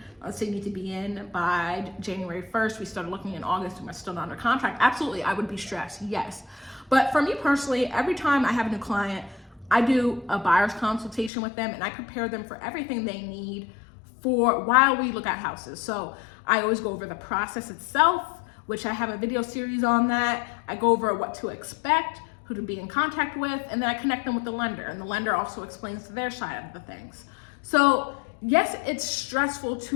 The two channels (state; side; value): drops out; right; at 11.3 s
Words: Let's say you need to be in by January 1st. We started looking in August and we're still not under contract. Absolutely, I would be stressed, yes. But for me personally, every time I have a new client, I do a buyer's consultation with them and I prepare them for everything they need for while we look at houses. So I always go over the process itself, which I have a video series on that. I go over what to expect, who to be in contact with, and then I connect them with the lender. And the lender also explains their side of the things. So yes, it's stressful